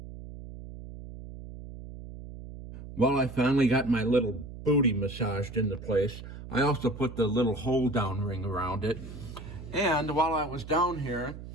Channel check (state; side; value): noise; right; hum, 12 dB below the sound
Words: Well, I finally got my little booty massaged into place. I also put the little hold-down ring around it. And while I was down here,